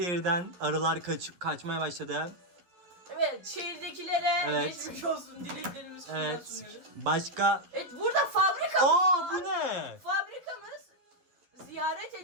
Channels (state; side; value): late; left; 11 ms